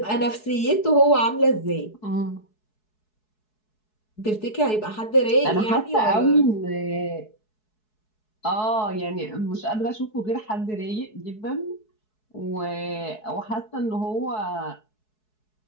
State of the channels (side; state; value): right; late; 4.7 ms